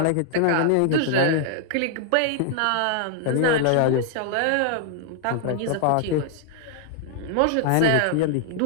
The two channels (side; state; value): both; different; correlation -0.01